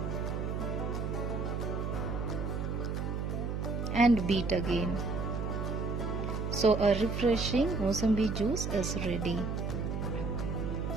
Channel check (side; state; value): right; noise; hum, 2 dB below the sound